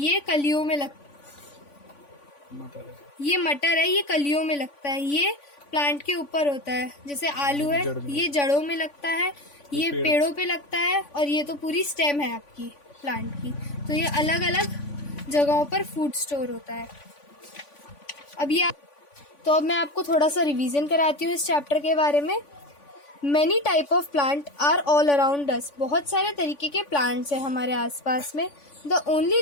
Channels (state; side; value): late; right; 3.5 ms